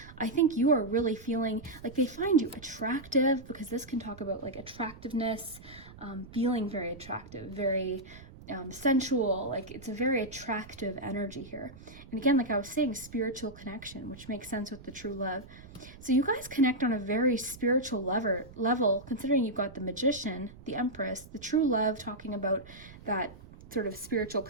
I think you are really feeling like they find you attractive, because this can talk about like attractiveness, feeling very attractive, very sensual. Like it's a very attractive energy here. And again, like I was saying, spiritual connection, which makes sense with the true love. So you guys connect on a very spiritual level, considering you've got the Magician, the Empress, the true love, talking about that sort of spiritual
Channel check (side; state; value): right; noise; rumble, 18 dB below the sound